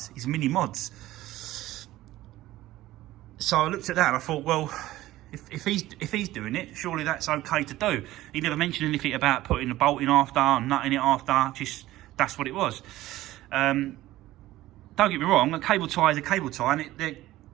He's Mini Mods. So I looked at that and I thought, well, if he's doing it, surely that's okay to do. He never mentioned anything about putting the bolt in after and nutting it after. Just that's what it was. Don't get me wrong. A cable tie is a cable tie, and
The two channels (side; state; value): left; quieter; 16.0 dB